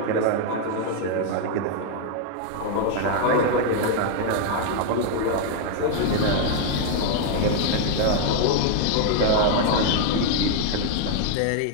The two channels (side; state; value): both; different; correlation 0.00